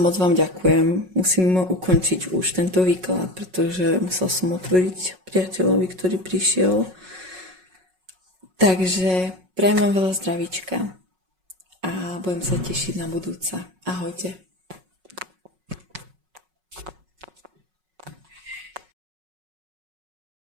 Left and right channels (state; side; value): late; left; 5.4 ms